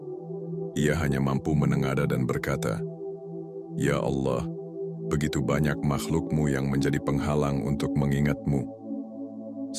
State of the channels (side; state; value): both; identical; correlation 1.00